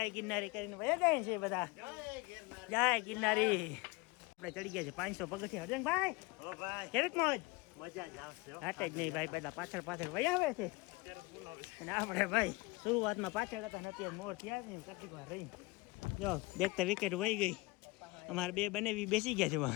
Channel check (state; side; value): quieter; right; 23.7 dB